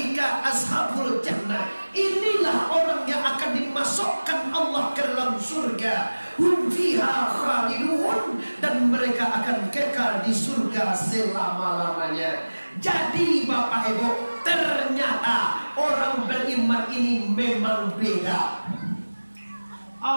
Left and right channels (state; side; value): inverted; both; correlation -1.00